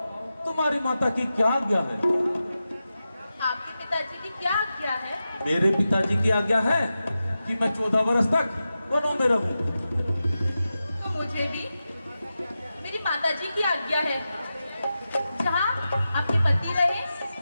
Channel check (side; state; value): both; inverted; correlation -0.92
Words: तुम्हारी माता की क्या आज्ञा है? आपके पिताजी की क्या आज्ञा है? मेरे पिताजी की आज्ञा है कि मैं 14 वर्ष तक वनों में रहूं। तो मुझे भी मेरी माता जी की आज्ञा है, जहाँ आपके पति रहे